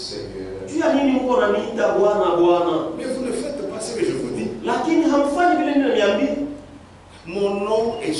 Mais vous ne faites pas ce que je vous dis. Mon nom est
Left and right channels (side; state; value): both; identical; correlation 1.00